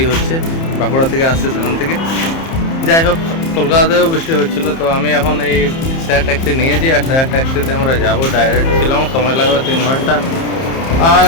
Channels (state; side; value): late; right; 30 ms